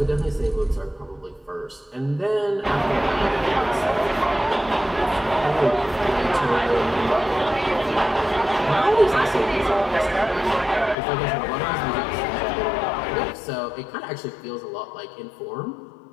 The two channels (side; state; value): right; drops out; at 11.0 s